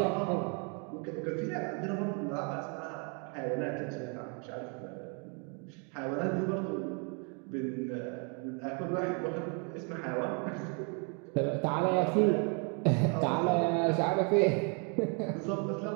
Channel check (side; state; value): left; quieter; 36.6 dB